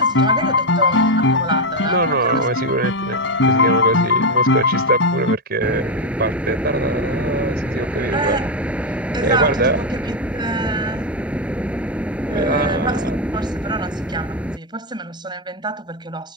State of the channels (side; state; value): both; normal; correlation 0.06